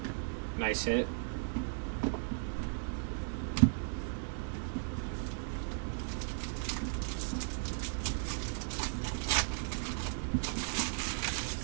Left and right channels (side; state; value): left; silent; 54 dB below the other